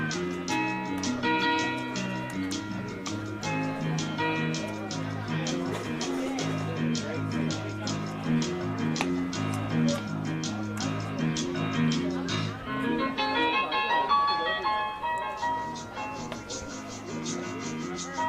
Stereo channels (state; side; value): identical; both; correlation 1.00